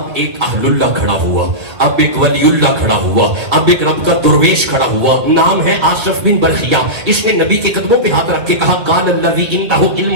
ایک اہل اللہ کھڑا ہوا, اب ایک ولی اللہ کھڑا ہوا, اب ایک رب کا درویش کھڑا ہوا. نام ہے آصف بن برخیہ. اس نے نبی کے قدموں پہ ہاتھ رکھ کے کہا قال الذی عنده علم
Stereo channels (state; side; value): late; left; 2.0 ms